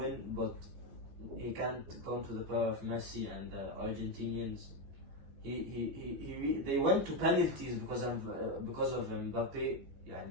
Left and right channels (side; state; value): left; late; 15 ms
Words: but he can't come to the power of Messi and the Argentinians. They went to penalties because of Mbappe.